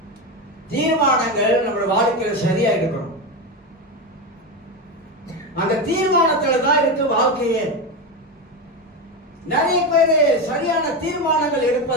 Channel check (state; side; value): normal; both; correlation 0.15